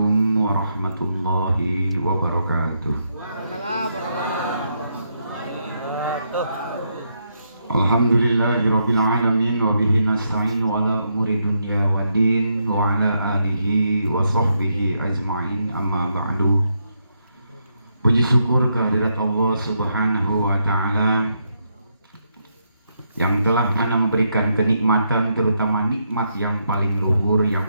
warahmatullahi wabarakatuh. Alhamdulillahirabbil alamin wa bihi nasta'inu ala umuri dunya waddin wa ala alihi wa sahbihi ajma'in, amma ba'du. Puji syukur kehadirat Allah Subhanahu wa taala yang telah memberikan kenikmatan, terutama nikmat yang paling luhur,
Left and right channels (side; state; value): both; inverted; correlation -0.79